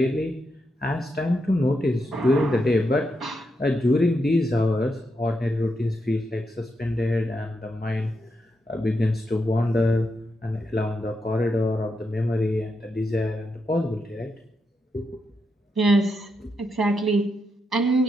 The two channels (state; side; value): normal; both; correlation 0.83